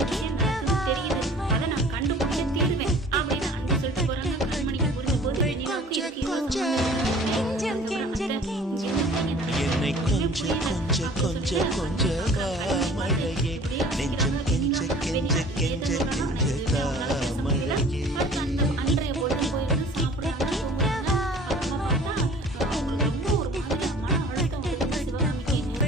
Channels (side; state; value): both; normal; correlation 0.48